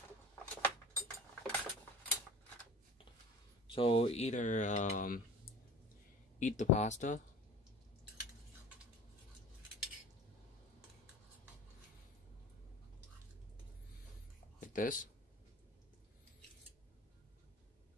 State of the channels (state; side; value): normal; both; correlation 0.40